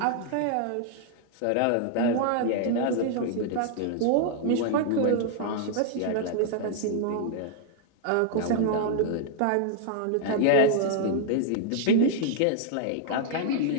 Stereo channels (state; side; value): different; both; correlation -0.01